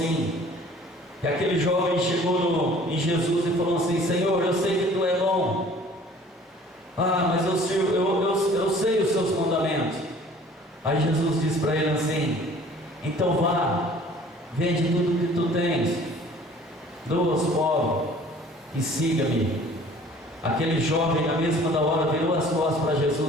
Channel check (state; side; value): normal; both; correlation 0.51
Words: que aquele jovem chegou em Jesus e falou assim: Senhor, eu sei que Tu é bom. Ah, mas eu sei os Seus mandamentos. Aí Jesus disse para ele assim: então vá, vende tudo que tu tens, doa aos pobres e siga-me. Aquele jovem, na mesma da hora, virou as costas para